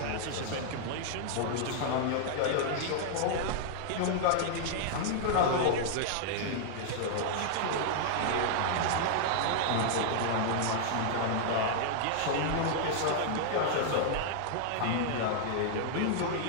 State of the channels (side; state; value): both; different; correlation -0.01